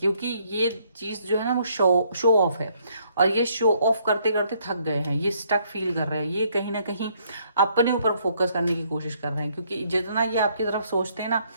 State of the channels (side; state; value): both; inverted; correlation -0.68